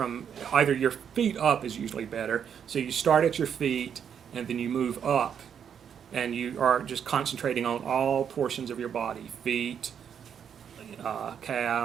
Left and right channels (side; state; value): left; quieter; 8.0 dB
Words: either your feet up is usually better. So you start at your feet and then you move up, and you are just concentrating on all portions of your body: feet,